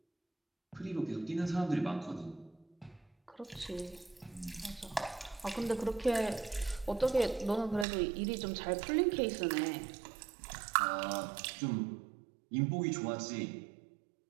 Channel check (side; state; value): left; drops out; at 7.9 s